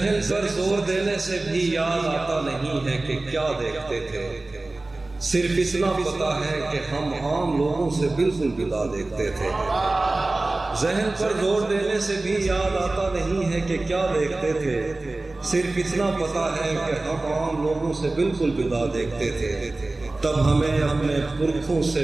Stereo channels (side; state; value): left; quieter; 3.0 dB